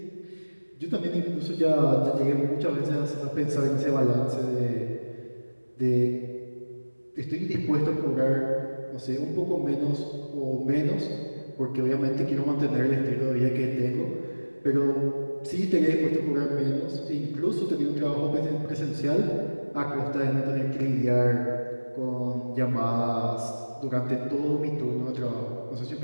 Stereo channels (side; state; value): both; inverted; correlation -1.00